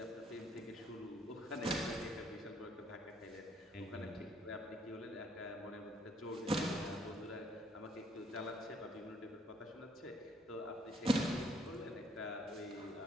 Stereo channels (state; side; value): normal; both; correlation 0.66